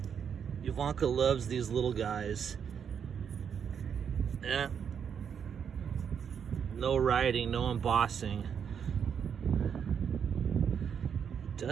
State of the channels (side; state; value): left; quieter; 7.5 dB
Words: Ivanka loves these little guys. Yeah. No writing, no embossing. It